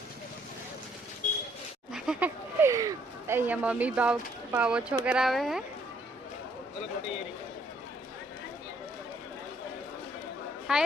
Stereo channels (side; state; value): both; normal; correlation 0.67